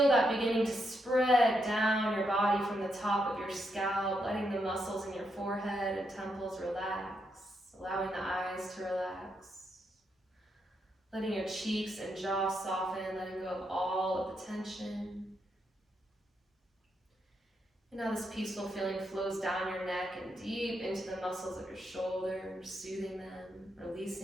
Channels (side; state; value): both; normal; correlation 0.81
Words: that beginning to spread down your body from the top of your scalp, letting the muscles in your forehead and temples relax, allowing the eyes to relax, letting your cheeks and jaw soften, letting go of all of the tension. And now this peaceful feeling flows down your neck and deep into the muscles of your shoulders, soothing them,